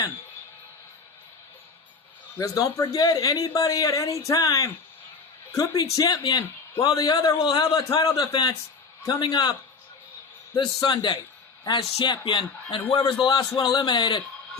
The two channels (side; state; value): right; quieter; 4.7 dB